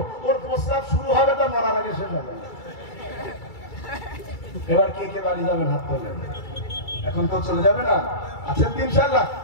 ওর প্রস্তাব শুরু হবে তো মরার আগে শেষ হবে। এবার কে কে বাড়ি যাবেন হাত তোলেন, এখন তো চলে যাবে না, আছেন তো ইনশাআল্লাহ?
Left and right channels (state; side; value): late; right; 2.3 ms